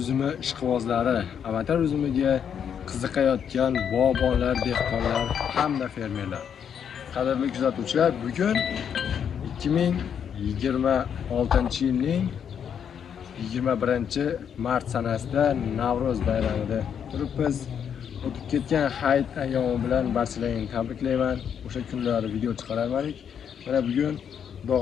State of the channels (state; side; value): quieter; right; 8.0 dB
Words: ishqibozlari, avatar uzumiga qiziqayotgan bog'bonlar, dehqonlar hamda fermerlar. Qadrli kuzatuvchilar, bugun 2026-yilning 21-mart sanasida Navro'z bayramida turibmiz. O'tib ketgan hayit ayyomi bilan barchalarini tabriklayman. O'sha kunlari video chiqarardik. Mana bugun Xudo